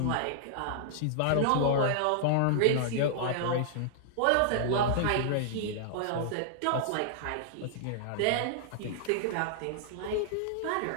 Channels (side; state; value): both; different; correlation -0.01